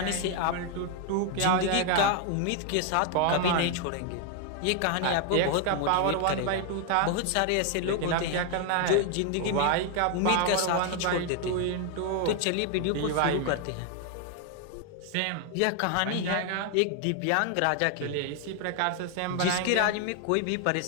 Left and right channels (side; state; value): both; different; correlation 0.00